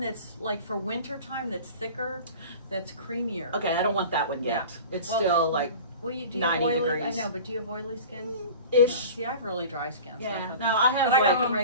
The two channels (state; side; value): inverted; both; correlation -0.38